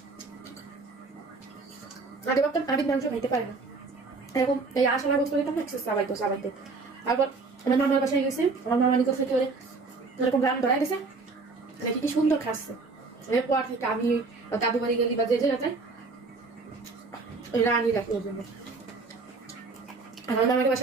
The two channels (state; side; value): quieter; left; 4.0 dB